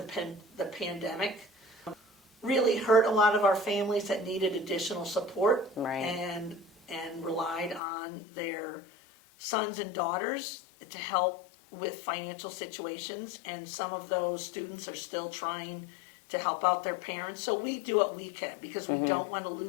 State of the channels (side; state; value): right; drops out; at 7.8 s